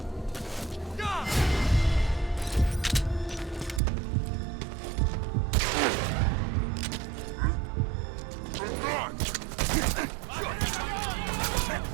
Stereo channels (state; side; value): drops out; left; at 3.8 s